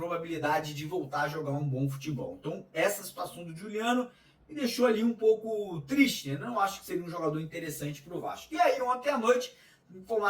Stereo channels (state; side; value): identical; both; correlation 1.00